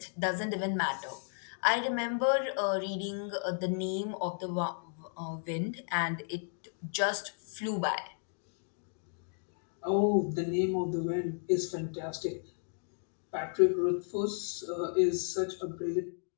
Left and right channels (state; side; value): silent; right; digital silence